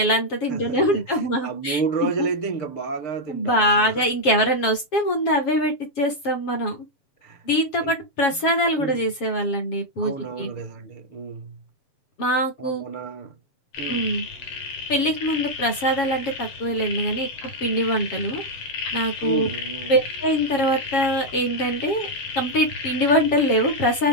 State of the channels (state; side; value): late; right; 7.3 ms